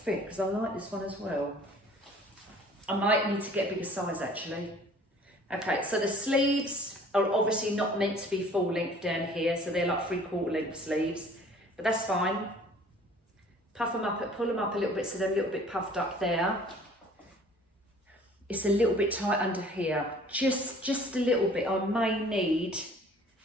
because I like this one as well. I might need to get a bigger size actually. Okay, so the sleeves are obviously not meant to be full length down here, so they're like 3/4 length sleeves, but that's fine. Puff them up, pull them up a little bit so they're a little bit puffed up there. It's a little bit tight under here, just a little bit. I may need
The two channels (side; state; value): both; normal; correlation 0.52